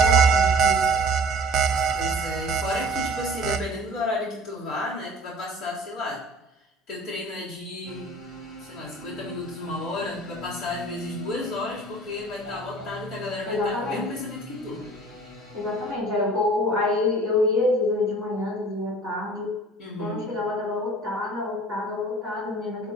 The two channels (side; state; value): both; normal; correlation 0.46